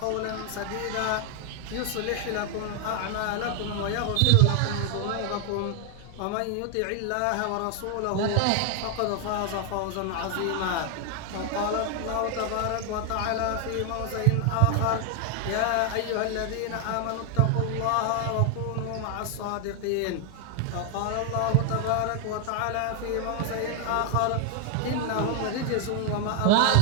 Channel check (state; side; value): different; both; correlation 0.00